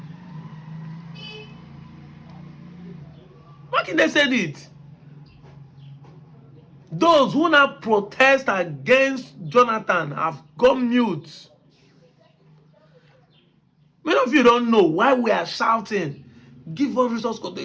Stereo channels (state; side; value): identical; both; correlation 1.00